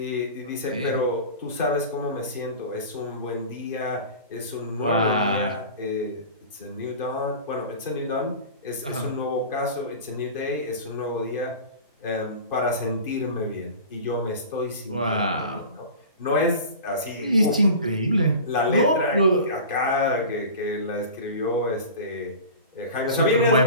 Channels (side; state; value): both; inverted; correlation -0.36